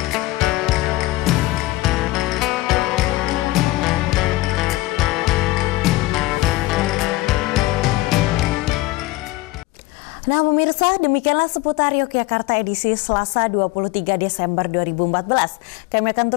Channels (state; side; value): quieter; right; 19.0 dB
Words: Nah pemirsa, demikianlah seputar Yogyakarta edisi Selasa 23 Desember 2014. Kami akan